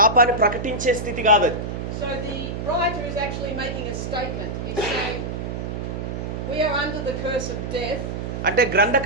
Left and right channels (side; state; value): right; noise; hum, 5 dB below the sound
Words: ప్రకటించే స్థితి కాదు అది. So the writer is actually making a statement. He's saying we are under the curse of death. అంటే